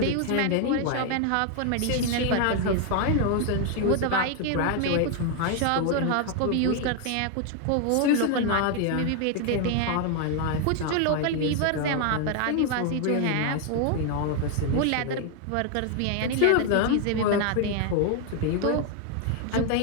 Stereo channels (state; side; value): different; both; correlation 0.00